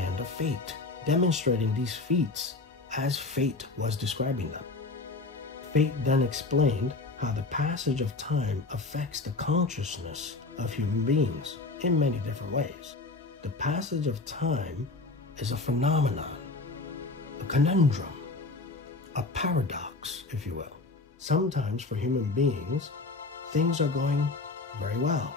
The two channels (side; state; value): right; quieter; 3.4 dB